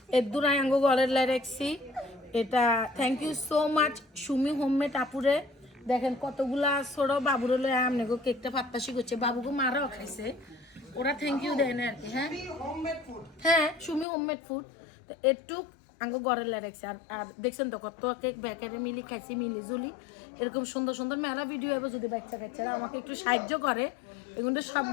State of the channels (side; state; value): right; drops out; at 14.1 s